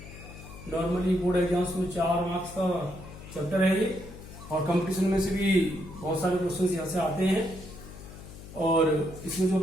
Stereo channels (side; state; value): left; noise; hum, 15 dB below the sound